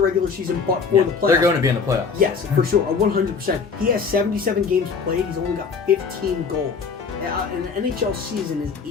regular season, but for the playoffs. They're going to be in the playoffs. Yes, for sure, 100%. He has 77 games played. He's only got 15 goals. And the NHL season is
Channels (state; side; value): quieter; right; 5.4 dB